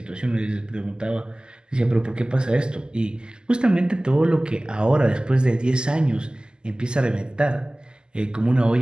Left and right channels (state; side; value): late; left; 0.046 ms